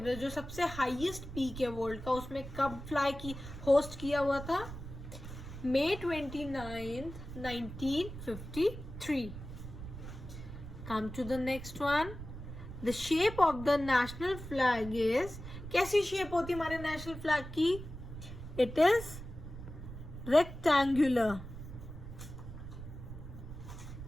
जो सबसे हाईएस्ट पीक है वर्ल्ड का, उसमें कब फ्लाई की होस्ट किया हुआ था? May 29th, 1953. Come to the next one. The shape of the national flag is, कैसी शेप होती है हमारे नेशनल फ्लैग की? It is rectangular.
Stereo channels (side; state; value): right; noise; rumble, 11 dB below the sound